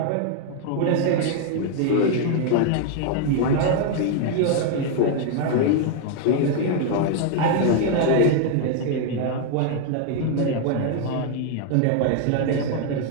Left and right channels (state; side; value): different; both; correlation 0.00